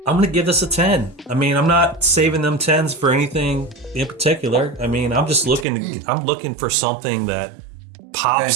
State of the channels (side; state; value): left; drops out; at 5.7 s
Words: I'm going to give this a 10. I mean, I'm not saving them 10s for anything in particular. I mean, I'm just looking for something that